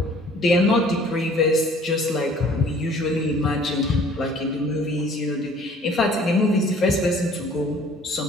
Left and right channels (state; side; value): normal; both; correlation 0.54